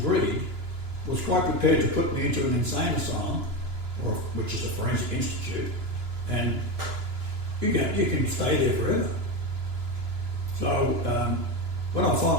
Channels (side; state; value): left; late; 2.9 ms